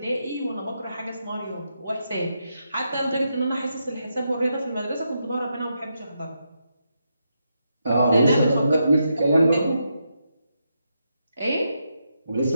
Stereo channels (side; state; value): both; inverted; correlation -0.83